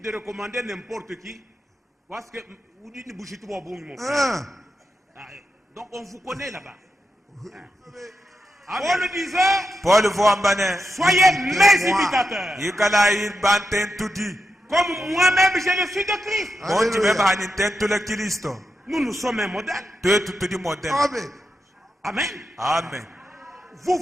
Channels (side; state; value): both; normal; correlation 0.87